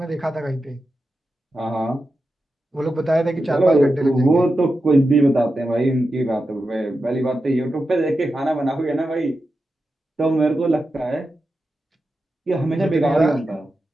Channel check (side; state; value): both; normal; correlation 0.90